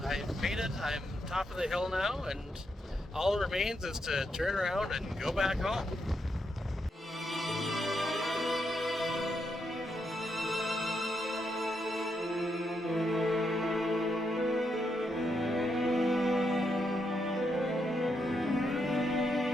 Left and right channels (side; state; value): both; normal; correlation 0.81